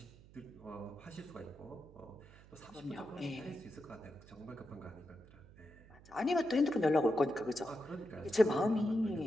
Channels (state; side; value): noise; right; hum, 22 dB below the sound